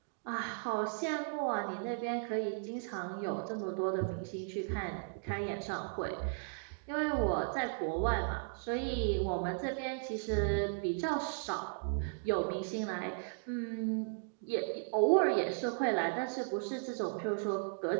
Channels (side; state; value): left; silent; digital silence